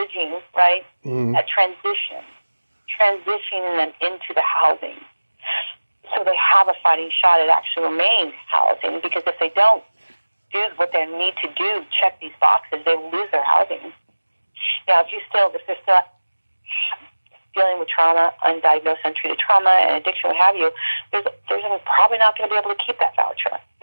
right? That transitioning them into the housing. So they have a fighting shot at actually remaining housing, because if they don't do what they need to do, check these boxes, they will lose their housing. Now, if they're still dealing with trauma, undiagnosed, untreated trauma, and addiction, what have you, there's probably not going to be able to keep that voucher,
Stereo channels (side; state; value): both; inverted; correlation -1.00